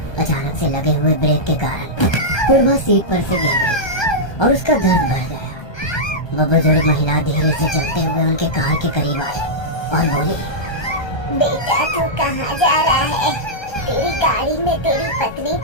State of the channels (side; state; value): right; late; 1.3 ms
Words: अचानक से लगे हुए ब्रेक के कारण पूर्वा सीट पर से गिर गई और उसका दर्द बढ़ गया। वह बुजुर्ग महिला धीरे से चलते हुए उनके कार के करीब आई और बोली, बेटा तू कहाँ जा रहा है? तेरी गाड़ी में तेरी पत्नी